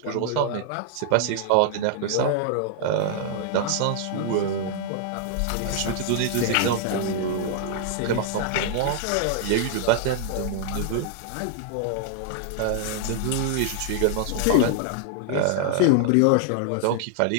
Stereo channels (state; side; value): different; both; correlation -0.01